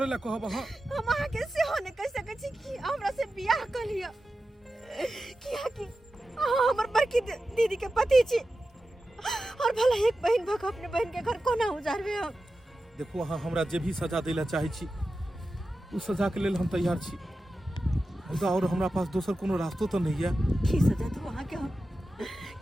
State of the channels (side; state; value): both; normal; correlation 0.92